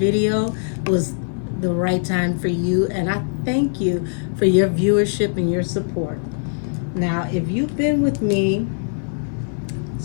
was the right time for you, and I thank you for your viewership and your support. Now, if you've been with me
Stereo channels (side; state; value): right; silent; 56 dB below the other